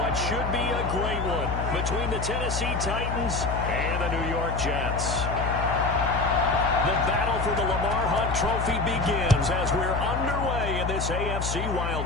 should be a great one between the Tennessee Titans and the New York Jets. The battle for the Lamar Hunt Trophy begins as we're underway in this AFC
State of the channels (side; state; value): left; noise; hum, 3 dB below the sound